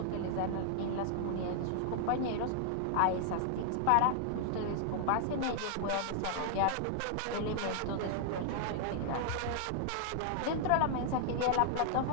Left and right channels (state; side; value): different; both; correlation -0.01